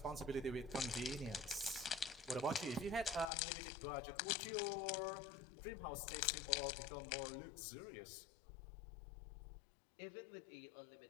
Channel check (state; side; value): drops out; right; at 3.3 s